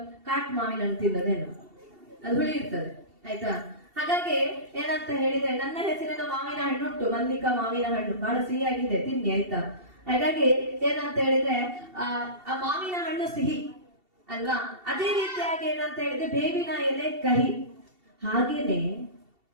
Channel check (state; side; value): late; left; 2.7 ms